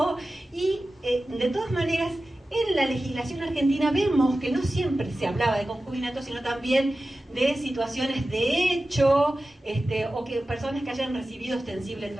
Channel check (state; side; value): normal; both; correlation 0.95